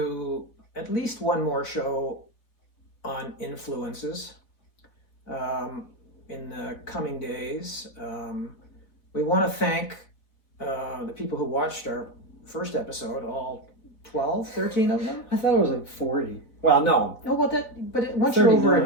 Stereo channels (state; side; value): late; right; 4.0 ms